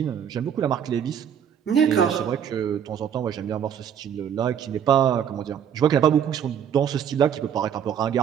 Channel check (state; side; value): quieter; left; 8.6 dB